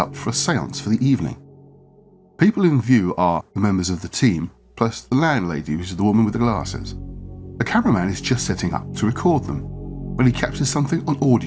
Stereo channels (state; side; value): identical; both; correlation 1.00